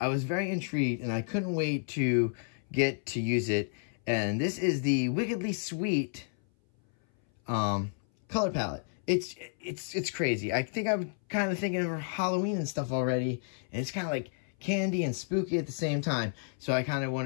I was very intrigued, and I couldn't wait to get to use it. And this is the Wickedly Sweet color palette. It's crazy. I think I'm kind of thinking of Halloween and stuff already, and it's kind of like candy and spooky at the same time. So I kind of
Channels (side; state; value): right; silent; 57 dB below the other